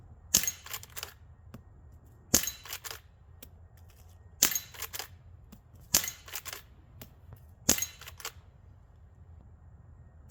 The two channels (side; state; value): both; identical; correlation 1.00